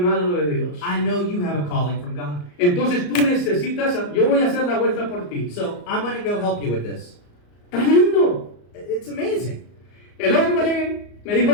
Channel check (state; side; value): late; right; 34 ms